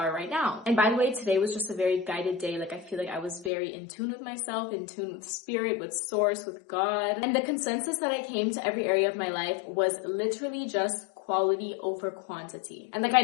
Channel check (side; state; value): right; drops out; at 3.5 s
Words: right now. And by the way, today was just a very guided day. Like, I feel like I was very in tune with myself, in tune with spirit, with source, with God. And the consensus that I came to every area of my life was literally just quality over quantity. And like, I